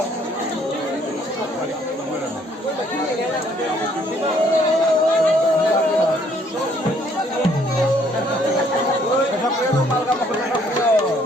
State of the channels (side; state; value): both; normal; correlation 0.64